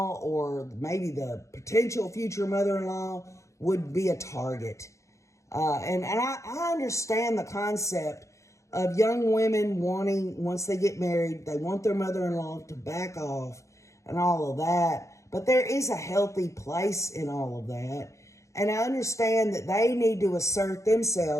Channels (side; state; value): right; late; 0.15 ms